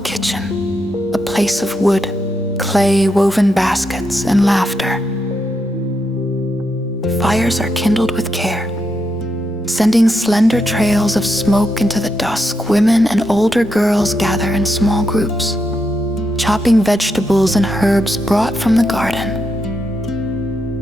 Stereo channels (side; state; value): both; normal; correlation 0.82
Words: a place of wood, clay, woven baskets, and laughter. Fires are kindled with care, Sending slender trails of smoke into the dusk, women and older girls gather in small groups, chopping vegetables and herbs brought from the